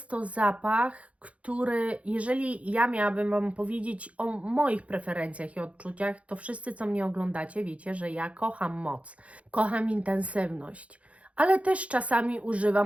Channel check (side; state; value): left; late; 0.064 ms